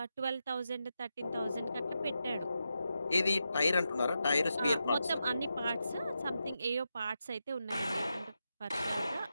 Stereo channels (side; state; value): both; inverted; correlation -0.87